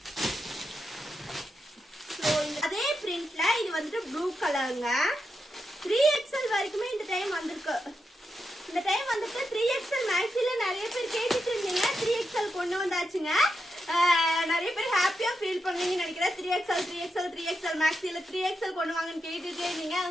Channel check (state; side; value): normal; both; correlation 0.86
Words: ஸோ அதே பிரிண்ட்ல இது வந்துட்டு ப்ளூ கலருங்க. 3XL வரைக்குமே இந்த டைம் வந்திருக்கு. இந்த டைம் வந்துட்டு 3XL மேக்ஸில நிறைய பேர் கேட்டுட்டு இருந்தீங்க. 3XL கொண்டு வந்தாச்சுங்க. நிறைய பேர் ஹாப்பியா ஃபீல் பண்ணுவீங்கன்னு நினைக்கிறேன். 3XL மேக்ஸில 3XL கொண்டு வாங்கன்னு கேட்டுட்டே இருந்தீங்க.